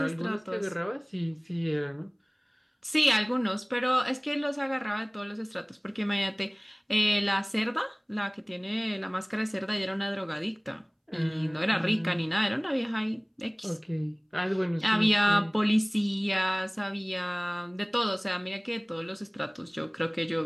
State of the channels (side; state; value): both; identical; correlation 1.00